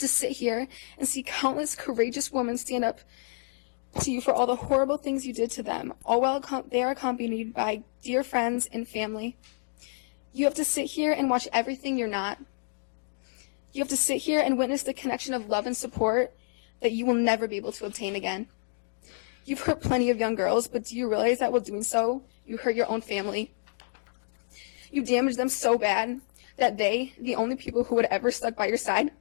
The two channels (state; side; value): silent; right; digital silence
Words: sit here and see countless courageous women stand up to you for all the horrible things you did to them, all while they are accompanied by dear friends and family. You have to sit here and watch everything you're not. You have to sit here and witness the connection of love and support that you will never be able to obtain again. You've hurt plenty of young girls, but do you realize that while doing so, you hurt your own family? You damaged them so bad that they, the only people who would ever stuck by your side,